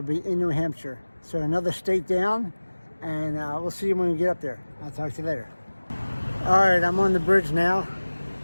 be in New Hampshire. So another state down, and we'll see you when we get up there. I'll talk to you later. All right, I'm on the bridge now,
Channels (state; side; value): inverted; both; correlation -1.00